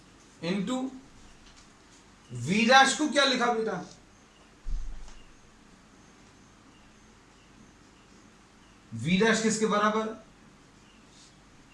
इनटू वी डैश को क्या लिखा बेटा, वी डैश किसके बराबर,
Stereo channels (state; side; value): identical; both; correlation 1.00